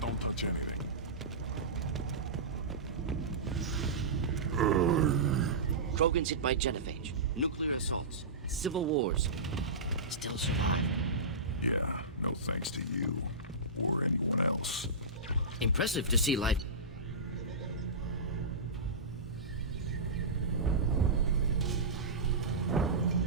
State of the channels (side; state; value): left; quieter; 3.1 dB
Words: touch anything. Krogan's hit by genophage, nuclear assaults, civil wars. Still survive. Yeah, no thanks to you. Or anyone else. Impressive to see life.